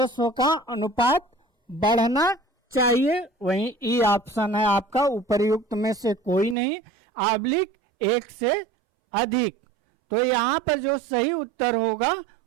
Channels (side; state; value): left; drops out; at 6.6 s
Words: का अनुपात बढ़ना चाहिए, वहीं ई ऑप्शन है आपका उपर्युक्त में से कोई नहीं, ऑब्लिक एक से अधिक। तो यहाँ पर जो सही उत्तर होगा